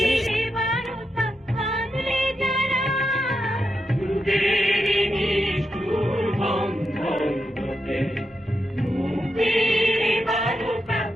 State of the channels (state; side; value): normal; both; correlation 0.86